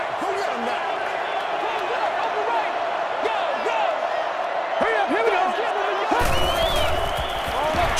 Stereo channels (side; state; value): both; identical; correlation 1.00